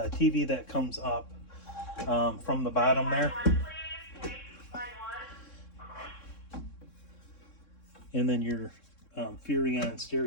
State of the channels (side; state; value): right; late; 3.6 ms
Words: TV that comes up from the bottom there. And then your Furrion